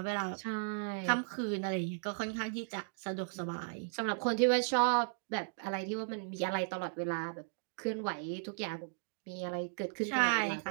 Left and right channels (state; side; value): silent; left; digital silence